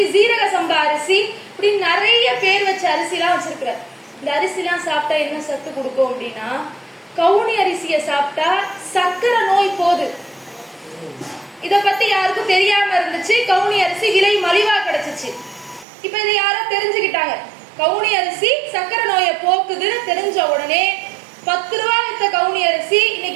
சீரக சம்பா அரிசி, இப்படி நிறைய பேர் வச்ச அரிசி எல்லாம் வச்சிருக்கிறார். இந்த அரிசி எல்லாம் சாப்பிட்டா என்ன சத்து கொடுக்கும் அப்படின்னா, கவுனி அரிசியை சாப்பிட்டா சக்கரை நோய் போகுது. இத பத்தி யாருக்கும் தெரியாம இருந்துச்சு. கவுனி அரிசி விலை மலிவா கிடைச்சிச்சு. இப்ப இதை யாரோ தெரிஞ்சுக்கிட்டாங்க. கவுனி அரிசி சக்கரை நோயை போக்குதுன்னு தெரிஞ்ச உடனே 10 ரூபா வித்த கவுனி அரிசி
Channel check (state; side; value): drops out; left; at 15.9 s